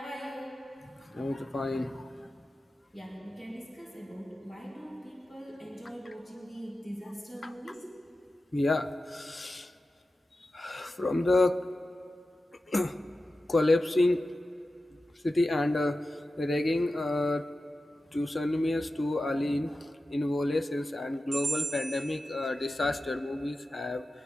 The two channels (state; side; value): normal; both; correlation 0.93